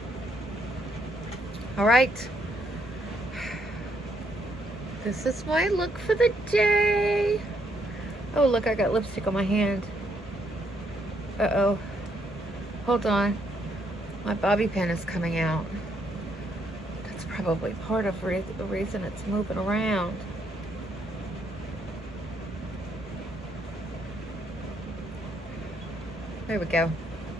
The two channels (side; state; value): both; normal; correlation 0.73